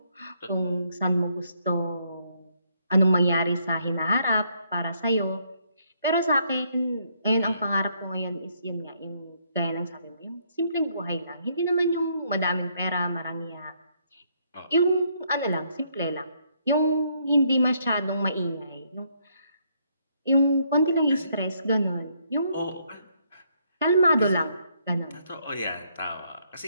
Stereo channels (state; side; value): inverted; both; correlation -0.71